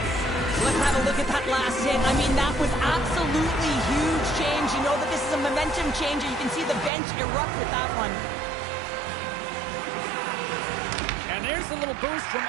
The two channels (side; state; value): left; drops out; at 6.9 s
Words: Let's have a look at that last hit. I mean, that was absolutely huge change. You know that this is a momentum changer. You can see the bench erupt with that one. And there's a little boost from